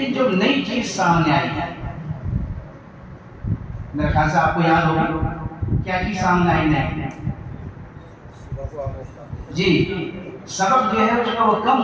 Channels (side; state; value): both; identical; correlation 1.00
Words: جو نئی چیز سامنے آئی ہے, میرے خیال سے آپ کو یاد ہوگی کیا چیز سامنے آئی نہیں. جی, سبق جو ہے اس کا وہ کم